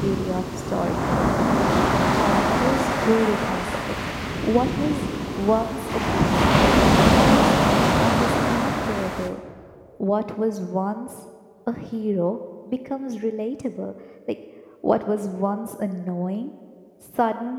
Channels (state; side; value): identical; both; correlation 1.00